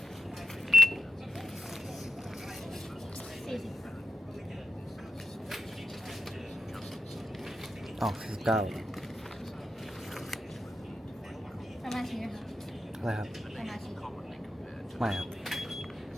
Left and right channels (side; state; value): both; normal; correlation 0.89